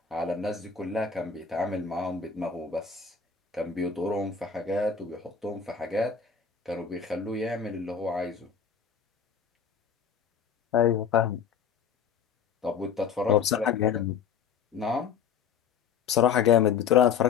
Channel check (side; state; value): right; quieter; 6.8 dB